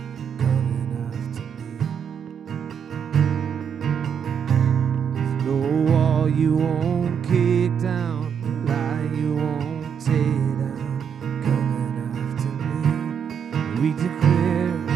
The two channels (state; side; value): quieter; left; 7.6 dB